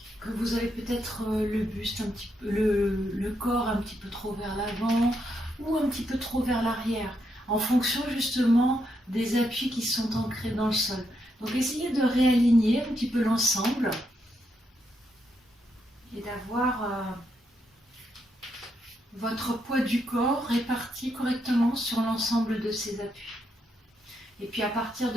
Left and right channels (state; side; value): normal; both; correlation 0.80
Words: que vous avez peut-être le buste un petit peu, le corps un petit peu trop vers l'avant ou un petit peu trop vers l'arrière, en fonction justement des appuis qui sont ancrés dans le sol. Donc essayez de réaligner un petit peu l'ensemble et d'avoir votre poids du corps réparti correctement sur l'ensemble de ces appuis. Et puis à partir